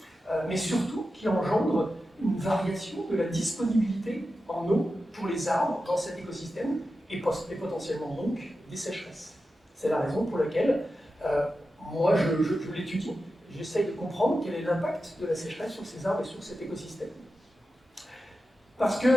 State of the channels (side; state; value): both; normal; correlation 0.92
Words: mais surtout qui engendre une variation de la disponibilité en eau pour les arbres dans cet écosystème et potentiellement donc des sécheresses. C'est la raison pour laquelle moi je l'étudie, j'essaye de comprendre quel est l'impact de la sécheresse sur ces arbres et sur cet écosystème. Parce